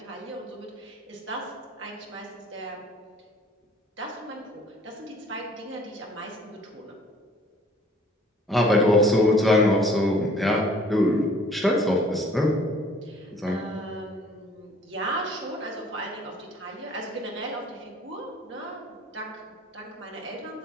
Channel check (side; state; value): both; normal; correlation 0.54